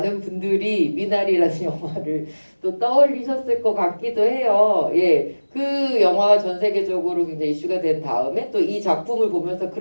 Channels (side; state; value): both; inverted; correlation -1.00